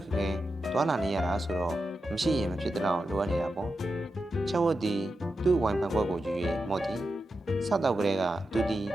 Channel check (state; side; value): normal; both; correlation 0.89